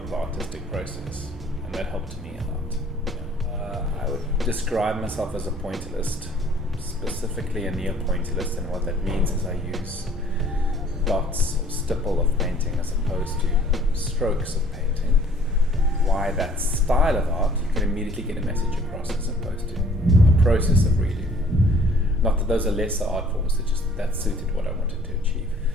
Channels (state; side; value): normal; both; correlation 0.55